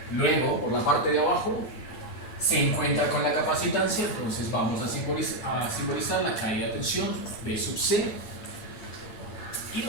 Luego, por la parte de abajo, se encuentra con la capacitancia, entonces vamos a simbolizar la caída de tensión V sub C y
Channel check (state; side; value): late; right; 9.6 ms